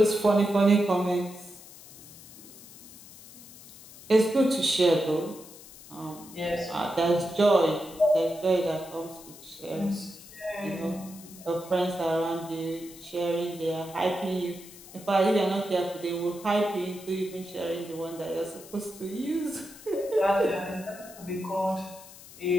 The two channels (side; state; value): left; noise; hiss, 19 dB below the sound